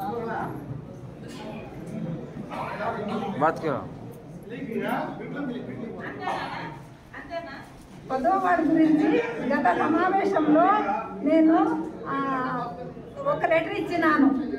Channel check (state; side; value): identical; both; correlation 1.00